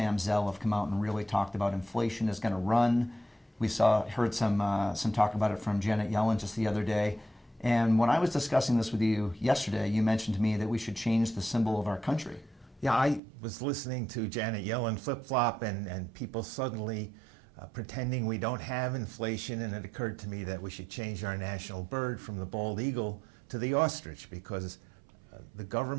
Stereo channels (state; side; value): drops out; left; at 13.2 s